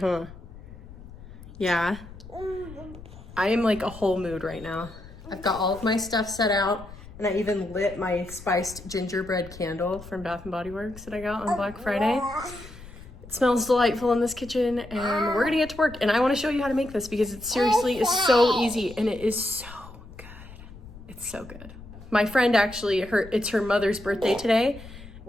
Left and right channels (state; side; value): noise; left; rumble, 17 dB below the sound